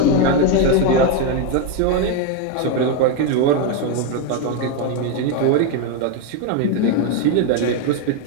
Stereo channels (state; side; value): different; both; correlation 0.01